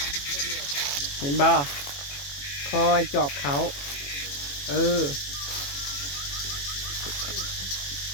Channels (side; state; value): right; late; 21 ms